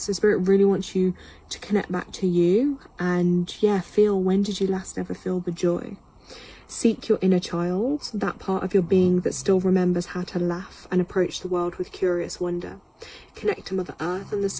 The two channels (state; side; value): identical; both; correlation 1.00